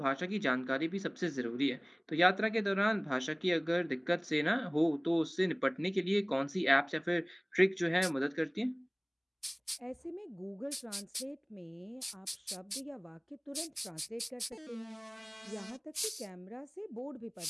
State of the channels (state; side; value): identical; both; correlation 1.00